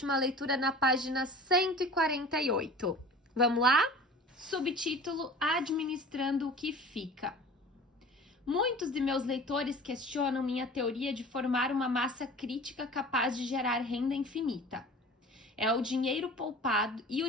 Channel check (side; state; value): both; normal; correlation 0.41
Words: leitura na página 148. Vamos lá? Subtítulo: Administrando o que fica. Muitos de meus leitores questionam minha teoria de formar uma massa crítica capaz de gerar renda infinita. É o dinheiro poupado, e o